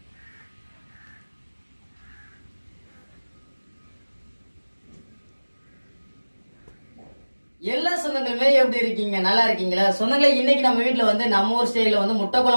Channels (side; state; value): both; inverted; correlation -1.00